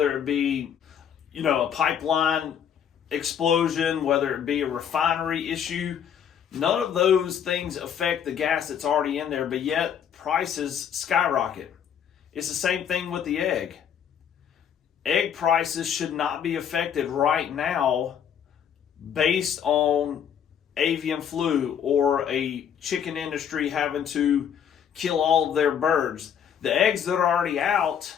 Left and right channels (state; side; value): quieter; right; 8.5 dB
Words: it be, a pipeline explosion, whether it be a refinery issue. None of those things affect the gas that's already in there, but yet prices skyrocket. It's the same thing with the egg. Egg prices should not be affected right now based on avian flu or a chicken industry having to kill all of their birds. The eggs that are already out